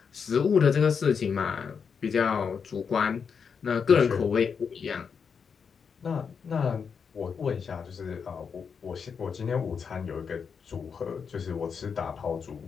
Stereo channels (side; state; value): right; quieter; 6.2 dB